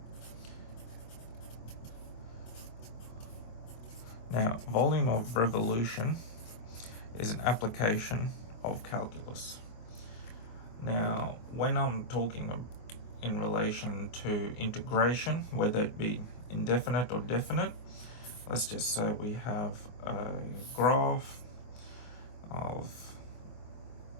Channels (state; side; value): late; right; 24 ms